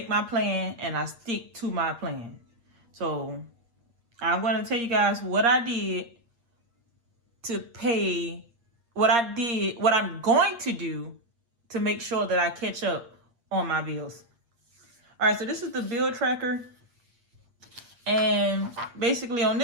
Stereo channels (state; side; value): late; left; 8.5 ms